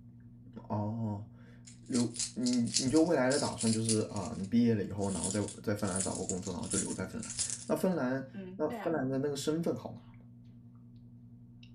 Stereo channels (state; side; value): identical; both; correlation 1.00